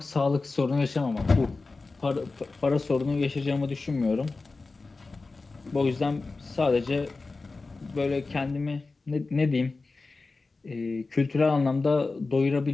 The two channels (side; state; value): right; quieter; 3.8 dB